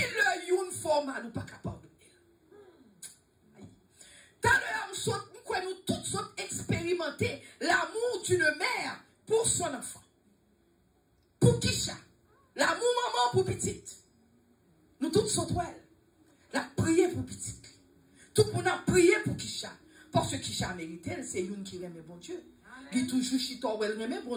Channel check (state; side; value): identical; both; correlation 1.00